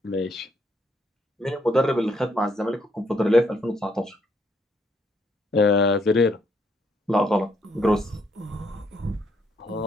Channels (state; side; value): normal; both; correlation 0.72